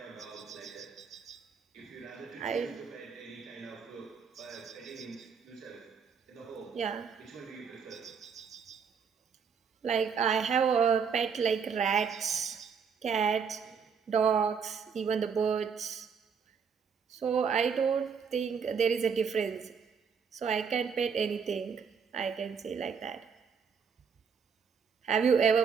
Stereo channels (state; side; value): quieter; left; 6.4 dB